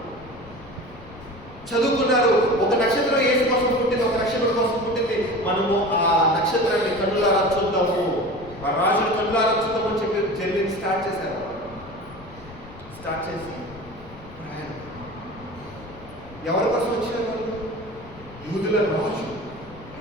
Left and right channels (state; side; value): noise; left; rumble, 19 dB below the sound